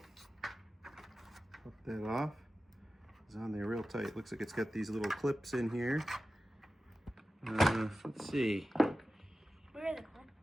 Pop that off. It's on there real tight. Looks like it's got these little clips in here. Let's see. Where are the clips?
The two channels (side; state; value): both; normal; correlation 0.94